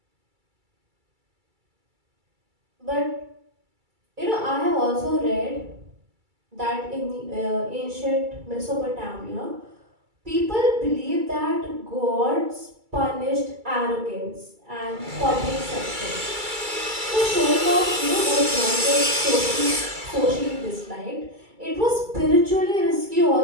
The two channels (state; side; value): late; left; 2.3 ms